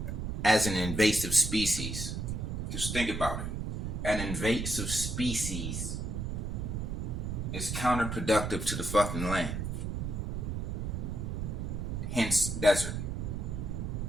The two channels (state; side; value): noise; right; rumble, 3 dB below the sound